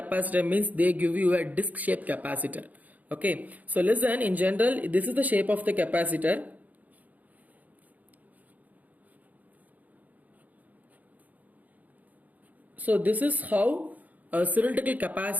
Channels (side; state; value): left; late; 0.078 ms